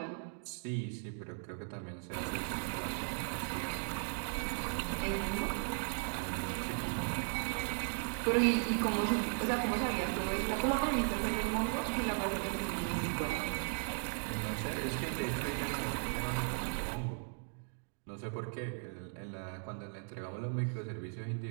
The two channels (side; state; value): left; silent; 53 dB below the other